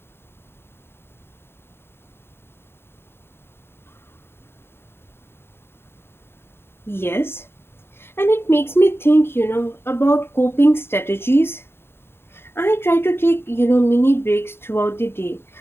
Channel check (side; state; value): right; late; 0.11 ms